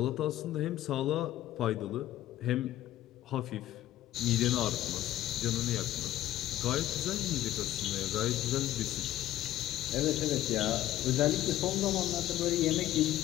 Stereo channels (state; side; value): quieter; right; 13.9 dB